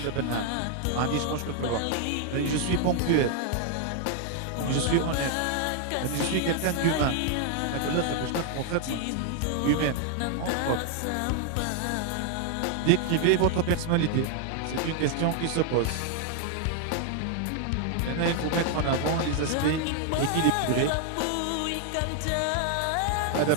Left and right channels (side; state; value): both; different; correlation 0.00